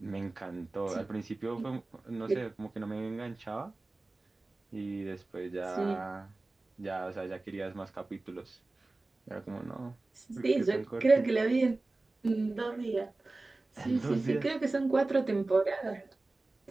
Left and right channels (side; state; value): left; quieter; 3.1 dB